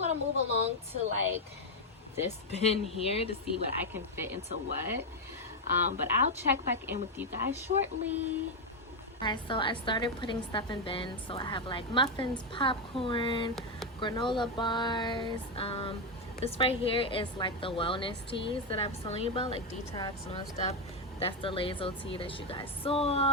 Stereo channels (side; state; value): both; normal; correlation 0.05